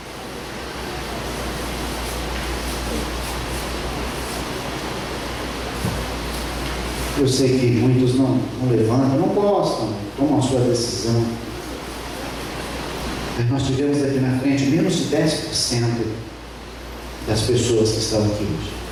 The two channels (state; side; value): identical; both; correlation 1.00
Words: Eu sei que muitos não levantam, não gostam, tomam a sua decisão. Mas nós tivemos aqui na frente menos de 10% das pessoas que estão aqui hoje.